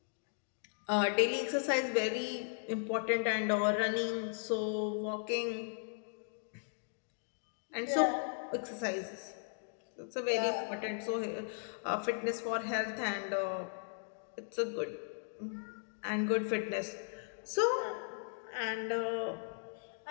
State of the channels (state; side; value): silent; right; digital silence